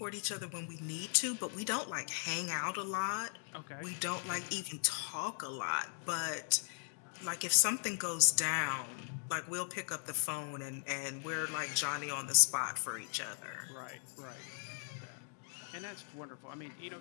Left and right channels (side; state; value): right; silent; digital silence